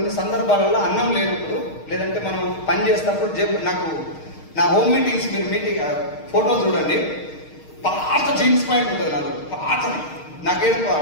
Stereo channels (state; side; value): late; right; 6.5 ms